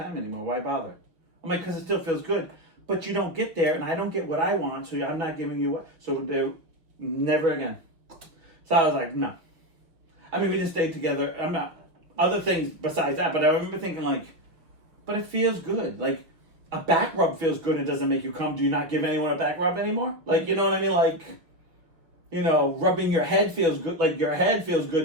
anymore. Why bother? I'm like, because it still feels good. But you don't get there, and I don't get what I want, so I'm not giving you what. So never again. So I was like, no. I mean, we just stayed together. I'm not, other things besides that, but I remember thinking like, but it feels good. Like, a back rub feels good and it doesn't make you come. Do you not give anyone a back rub anymore? Like, you know what I mean? Like, you know, rubbing your head feels good. Like, your head feels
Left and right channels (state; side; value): late; left; 5.8 ms